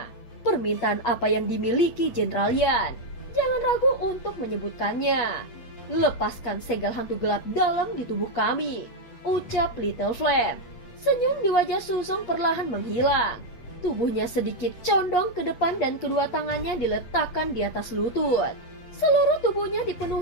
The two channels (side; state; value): right; late; 8.4 ms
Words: permintaan apa yang dimiliki Jenderal Yan? Jangan ragu untuk menyebutkannya. Lepaskan segel hantu gelap dalam di tubuh kami, ucap Little Flame. Senyum di wajah Suzong perlahan menghilang. Tubuhnya sedikit condong ke depan dan kedua tangannya diletakkan di atas lutut. Seluruh tubuhnya